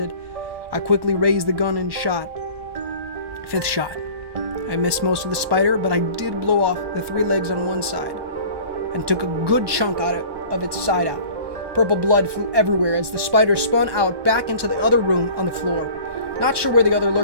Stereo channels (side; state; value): left; late; 1.2 ms